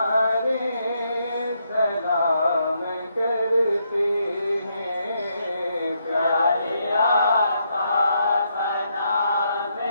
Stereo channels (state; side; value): inverted; both; correlation -0.77